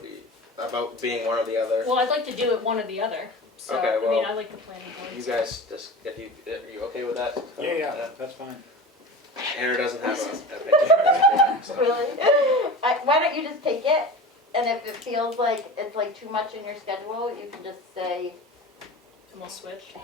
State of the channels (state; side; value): normal; both; correlation 0.32